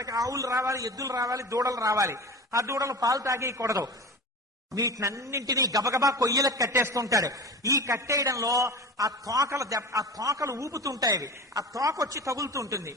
ఆవులు రావాలి, ఎద్దులు రావాలి, దూడలు రావాలి. ఆ దూడలు పాలు తాగేయకూడదు. వీటినన్నింటినీ గబగబా కొయ్యలకు కట్టేస్తుంటాడు. ఈ కట్టేయడంలో ఆ తోకలు ఊపుతుంటాయి. అవి ఆ తోక వచ్చి తగులుతుంటుంది.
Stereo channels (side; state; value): both; normal; correlation 0.33